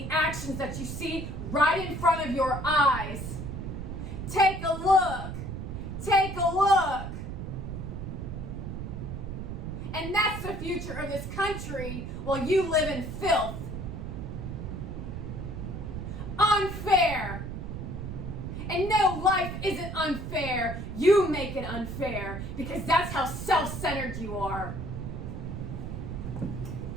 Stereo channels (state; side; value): noise; right; rumble, 6 dB below the sound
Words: actions that you see right in front of your eyes. Take a look. Take a look. And that's the future of this country while you live in filth. Unfair. And no, life isn't unfair. You make it unfair because that's how self-centered you are.